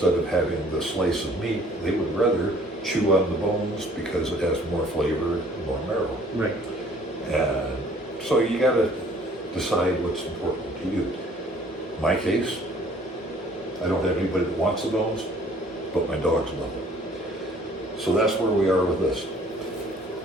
of having the slice of meat, they would rather chew on the bones because it has more flavor and more marrow. Right. And so you got to decide what's important to you. In my case, I don't have anybody that wants the bones, but my dogs love them. So that's where we are with this.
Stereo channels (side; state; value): both; normal; correlation 0.56